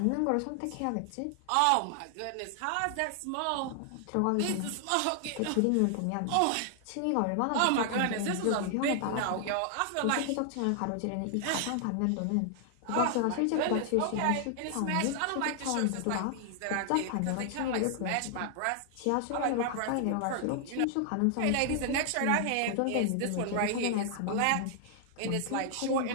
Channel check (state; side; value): different; both; correlation 0.00